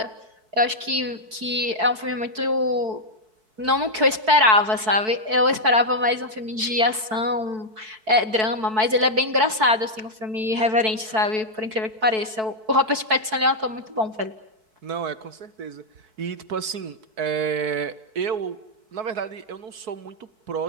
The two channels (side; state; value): left; late; 4.6 ms